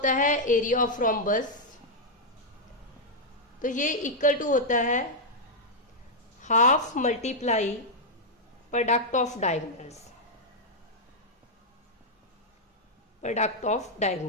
है एरिया ऑफ रोम्बस। तो ये इक्वल टू होता है half multiply product of diagonals, product of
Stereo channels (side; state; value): both; normal; correlation -0.04